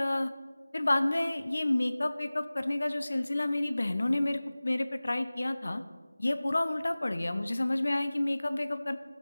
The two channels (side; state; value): both; inverted; correlation -0.99